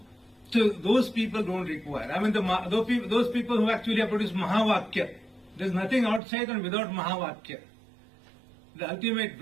So those people don't require. I mean, those people who actually have produced Mahavakya, there's nothing outside and without Mahavakya. the ultimate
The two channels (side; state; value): left; drops out; at 6.2 s